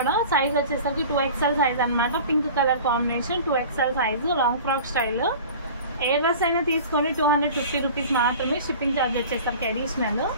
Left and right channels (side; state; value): both; inverted; correlation -0.40